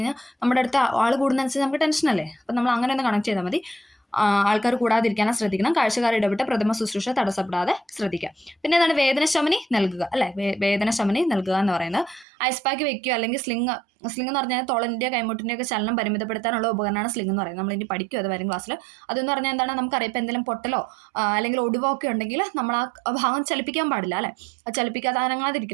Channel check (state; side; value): drops out; left; at 12.2 s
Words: നമ്മുടെ അടുത്ത് ആൾ കൂടുന്നതനുസരിച്ച് നമുക്ക് ടെൻഷനല്ലേ. അപ്പം നമ്മൾ അങ്ങനെ ഒന്ന് കണക്ട് ചെയ്താൽ മതി. ആൾക്കാർ കൂടാതിരിക്കാനും ശ്രദ്ധിക്കണം. കാഴ്ചക്കാർ ഇടപെട്ട് പ്രഥമ ശുശ്രൂഷ തടസ്സപ്പെടാതെ ശ്രദ്ധിക്കുക. പിന്നെ എന്താണ് വേദനശമനി നൽകുക അല്ലെ. വേദനശമനി നൽകുക എന്ന് പറയുന്നത് ഐസ് പാക്ക് വെക്കുക അല്ലെങ്കിൽ സ്ലിങ് എന്ന് പറഞ്ഞാൽ തൊളൻ്റെ കൈമുട്ടിൻ്റെ ഒക്കെ ചലനം പരിമിതപ്പെടുത്താനുള്ള ഉപകരണമാണ് സ്ലിങ് എന്ന് പറയുന്നത്. നമ്മൾ ഇനി പഠിക്കും അത് വരും ക്ലാസ്സിൽ. അതെന്ന് പറഞ്ഞാൽ എന്താണ് നമുക്കറിയാം ഇപ്പം എന്തെങ്കിലും പൊട്ടലോ അല്ലെങ്കിൽ ഒടിവോ ഒക്കെ ഉണ്ടെങ്കിൽ നമ്മൾ ആ ഭാഗം ചലിപ്പിക്കാൻ പാടില്ല അല്ലെ. അത് ചലിപ്പിക്കാതെ